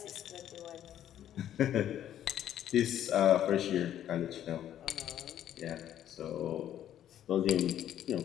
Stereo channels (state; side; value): quieter; right; 11.1 dB